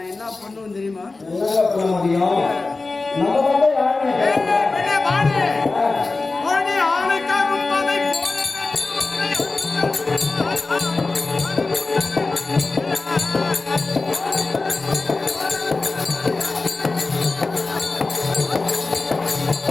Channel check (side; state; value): right; quieter; 3.6 dB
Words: என்ன பண்ணுவேன் தெரியுமா? என்னங்க பண்ண முடியும்? நம்ம மட்டும் யாருங்க? பெண்ணே பாடு. மணி ஆளுக்காகும் அதை